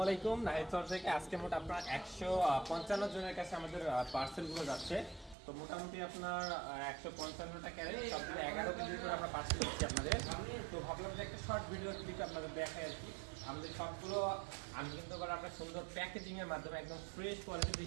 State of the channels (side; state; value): left; drops out; at 5.4 s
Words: আলাইকুম। নাহিদ স্যার থেকে আজকে মোট আপনার 155 জনের কাছে আমাদের পার্সেলগুলো যাচ্ছে। তো মোটামুটি আপনার 155টা ক্যারেট সবগুলো 11 কেজি করে আমরা পার্সেল দিচ্ছি আপনাদের। তো ভাবলাম যে একটা শর্ট ভিডিও ক্লিপ আপনাদের দেখাই আর কি। আমাদের সবগুলো আমি কিন্তু আবার আপনার সুন্দর প্যাকেজিংয়ের মাধ্যমে একদম ফ্রেশ